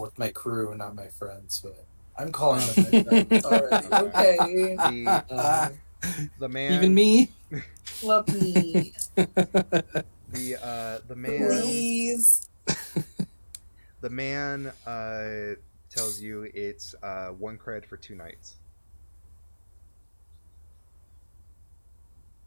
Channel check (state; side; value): inverted; both; correlation -1.00